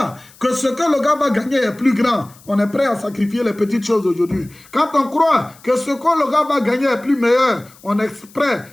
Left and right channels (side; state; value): left; noise; hiss, 25 dB below the sound